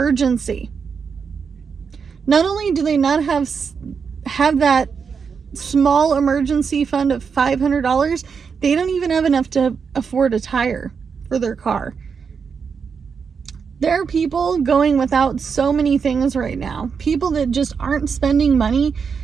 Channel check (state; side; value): quieter; left; 6.0 dB